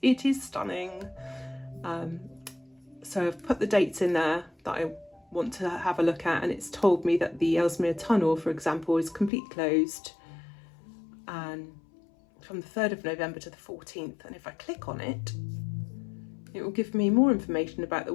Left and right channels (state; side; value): drops out; right; at 9.3 s